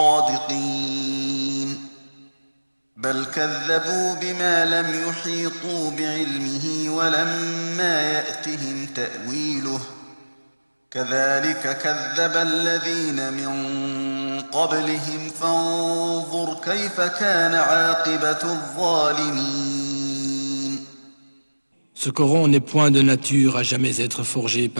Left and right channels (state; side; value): inverted; both; correlation -1.00